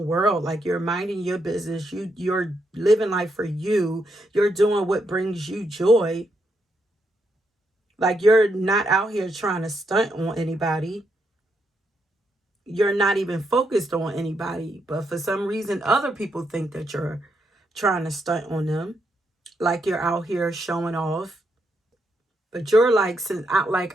world, like you're minding your business, you're living life for you, you're doing what brings you joy. Like you're not out here trying to stunt on anybody. You're not even focused on anybody, but for some reason other people think that you're trying to stunt on them, like you're out here showing off. But you're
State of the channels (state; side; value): normal; both; correlation 0.79